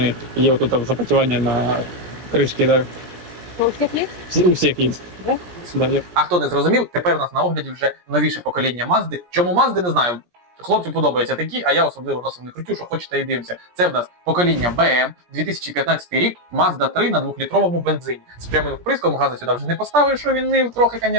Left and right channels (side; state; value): left; late; 17 ms